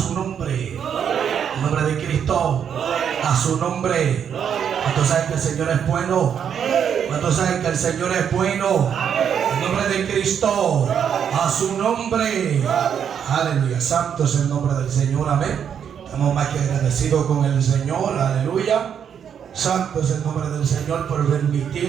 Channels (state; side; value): quieter; left; 8.1 dB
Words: nombre. El nombre de Cristo. A su nombre. ¿Cuántos saben que el Señor es bueno? ¿Cuántos saben que el Señor es bueno? El nombre de Cristo. A su nombre. Aleluya. Santo es el nombre del Señor. Amén. Estamos más que agradecidos con el Señor. Aleluya. Santo es el nombre del Señor por